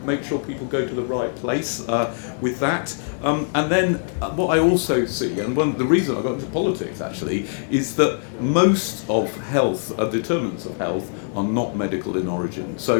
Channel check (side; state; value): right; silent; digital silence